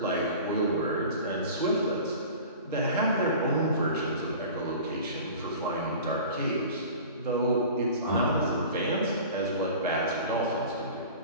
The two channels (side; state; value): both; inverted; correlation -0.39